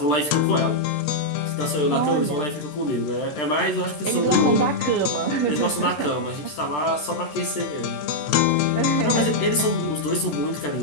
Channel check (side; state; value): right; late; 13 ms